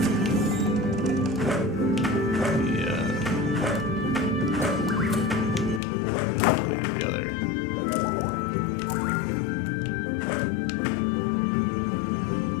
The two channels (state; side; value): drops out; right; at 5.8 s